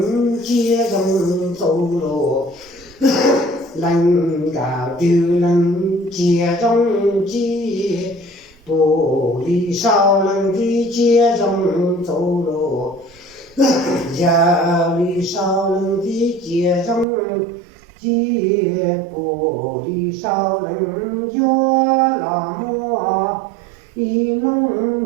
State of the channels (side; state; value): left; drops out; at 17.1 s